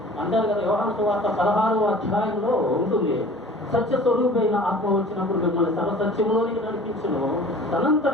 అంటారు కదా, యోహాను సువార్త 16వ అధ్యాయంలో ఉంటుంది, సత్య స్వరూపైన ఆత్మ వచ్చినప్పుడు మిమ్మల్ని సర్వసత్యంలోనికి నడిపించును,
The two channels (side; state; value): both; normal; correlation 0.45